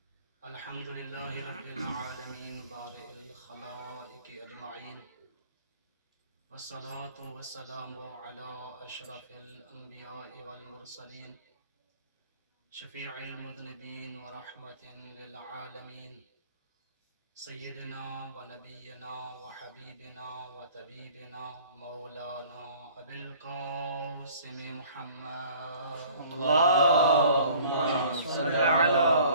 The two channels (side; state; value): both; inverted; correlation -0.51